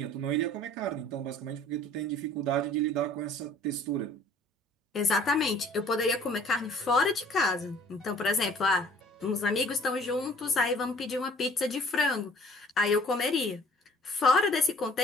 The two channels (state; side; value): normal; both; correlation 0.53